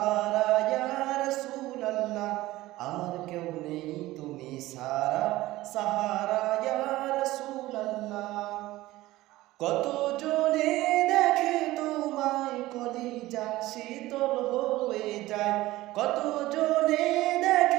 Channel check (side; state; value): left; quieter; 17.5 dB